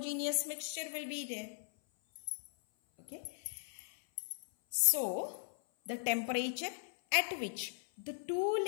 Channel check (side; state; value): right; silent; 52 dB below the other